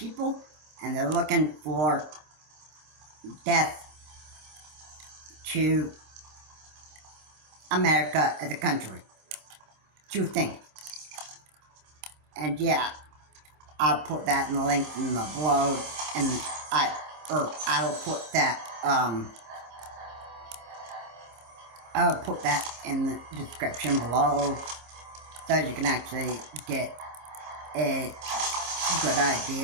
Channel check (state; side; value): late; left; 26 ms